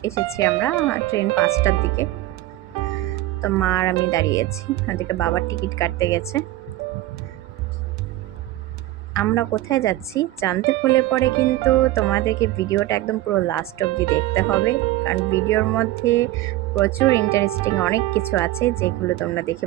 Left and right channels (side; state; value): left; quieter; 16.2 dB